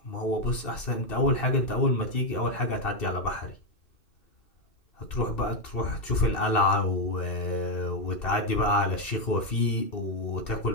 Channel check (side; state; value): right; late; 2.7 ms